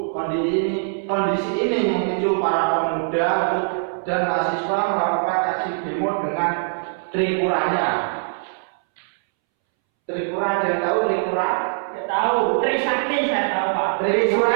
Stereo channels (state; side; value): silent; left; 64 dB below the other